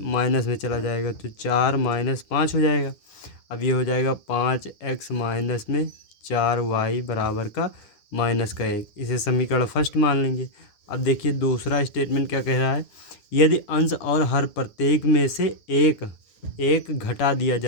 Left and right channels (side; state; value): right; late; 9.7 ms